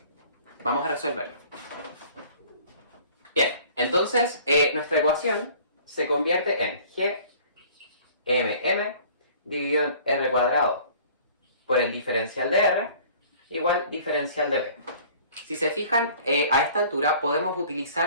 Vamos a resolverlo. Bien, entonces nuestra ecuación se convierte en gmm dividido en r cuadrado por el diferencial de r igual diferencial de b. Si se fijan, a esta altura podemos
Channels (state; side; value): inverted; both; correlation -0.50